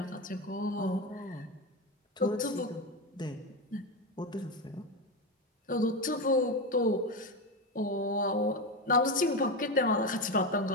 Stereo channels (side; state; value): both; normal; correlation 0.15